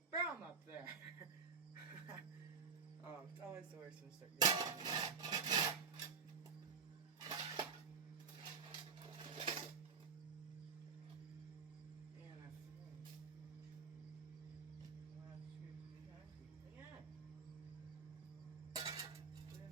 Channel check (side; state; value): left; quieter; 5.6 dB